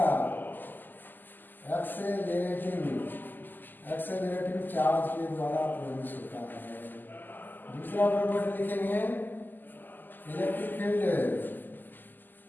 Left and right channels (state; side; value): late; right; 0.088 ms